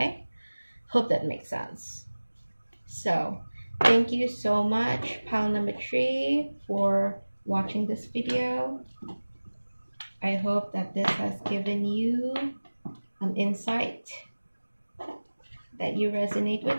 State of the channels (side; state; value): both; inverted; correlation -1.00